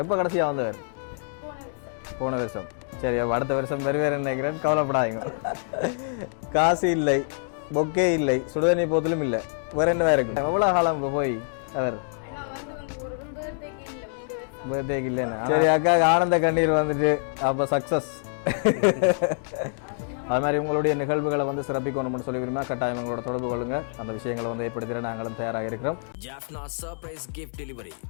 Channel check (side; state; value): right; silent; digital silence